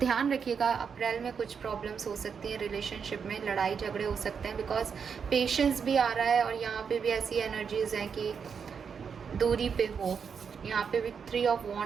रखिएगा, अप्रैल में कुछ प्रॉब्लम्स हो सकती हैं रिलेशनशिप में, लड़ाई झगड़े हो सकते हैं, बिकॉज पेशेंस भी आ रहा है और यहाँ पे भी ऐसी एनर्जीज हैं कि दूरी पे हो। यहाँ पे भी 3 ऑफ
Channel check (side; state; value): left; quieter; 6.4 dB